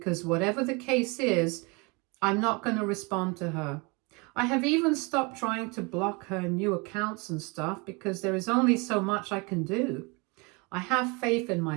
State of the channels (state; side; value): quieter; left; 28.9 dB